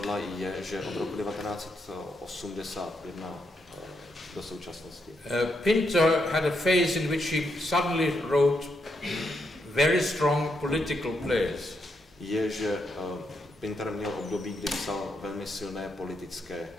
je, že od roku 1981 do současnosti. Pinter had a phase in which he suddenly wrote very strong political plays. Je, že Pinter měl období, kdy psal velmi silné politické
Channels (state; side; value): normal; both; correlation 0.80